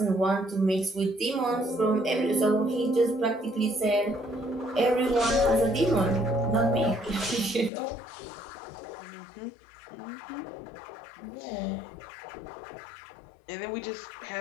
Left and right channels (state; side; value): drops out; right; at 7.7 s